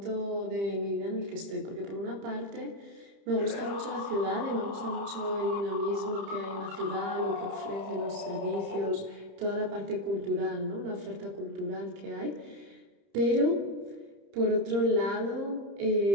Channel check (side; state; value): left; late; 30 ms